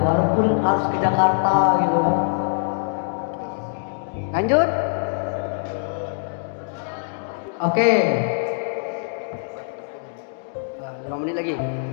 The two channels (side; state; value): right; silent; digital silence